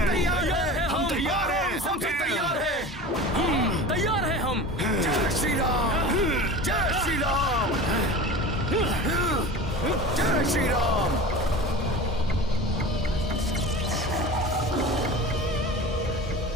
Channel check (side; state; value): both; normal; correlation 0.34